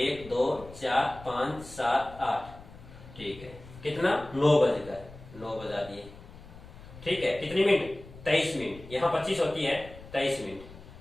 2 4 5 7 8। ठीक है, कितना? 9 बजकर, 9 बजा दिए। ठीक है, कितनी मिनट? 23 मिनट। यहाँ 25 होती है, 23 मिनट।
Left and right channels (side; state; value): left; noise; rumble, 18 dB below the sound